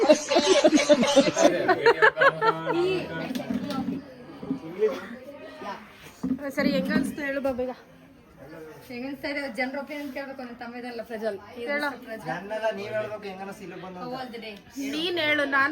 ಸರಿ, ಹೆಂಗ ಅನ್ಸ್ತು ಹೇಳು ಬಾಬೀಗ. ಹೆಂಗನ್ಸ್ತಾ ಇದೆ ಜನರ ಒಪಿನಿಯನ್ ಕೇಳ್ಬೇಕು. ನನ್ನ ತಮ್ಮ ಇದಲ್ಲ ಪ್ರಜ್ವಲ್. ನನ್ನೆಲ್ಲ ನೀವ್ ಹೇಳ್ಬೇಕು ಹೆಂಗ ಅನಿಸ್ತು ಇಲ್ಲಿ ಬಂದು. ನೀನ್ ಹೇಳು,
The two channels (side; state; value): both; identical; correlation 1.00